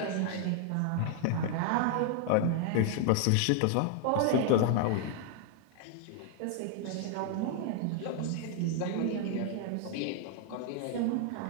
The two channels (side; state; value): both; different; correlation 0.00